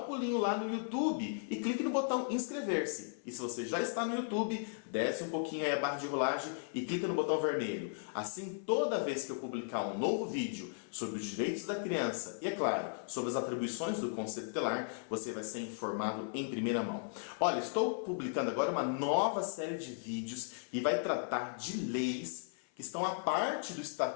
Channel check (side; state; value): right; silent; 54 dB below the other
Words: pulinho lá no YouTube e clique no botão inscrever-se. E se você já está no YouTube, desce um pouquinho aí a barra de rolagem e clica no botão vermelho. Assim, toda vez que eu publicar um novo vídeo sobre os direitos da criança e, é claro, sobre as atribuições do Conselho Tutelar, você vai ser informado em primeira mão. Olha, estou publicando agora uma nova série de vídeos que vai tratar de leis que estão a parte do